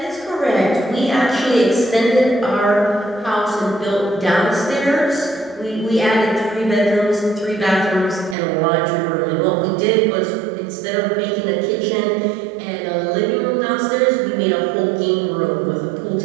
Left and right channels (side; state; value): left; drops out; at 8.3 s